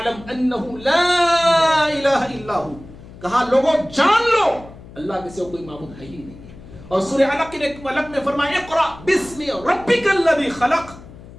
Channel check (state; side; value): noise; left; hum, 18 dB below the sound